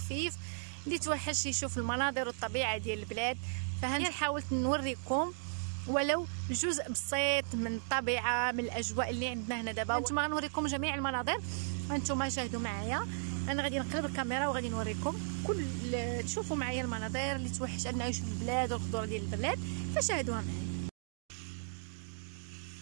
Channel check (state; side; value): silent; left; digital silence